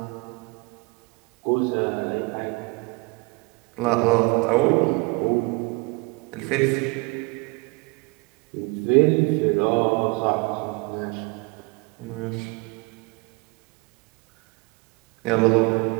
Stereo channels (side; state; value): left; quieter; 27.5 dB